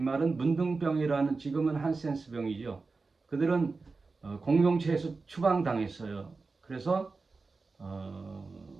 말은 문둥병이라는 지금은 한센스 병이죠. 그들은 공동체에서 추방당했어요. 그래서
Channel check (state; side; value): quieter; left; 4.1 dB